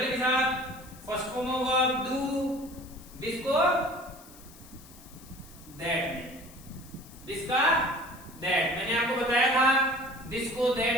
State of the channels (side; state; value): left; noise; hiss, 21 dB below the sound